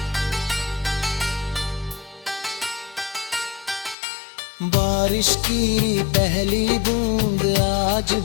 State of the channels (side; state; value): right; drops out; at 4.0 s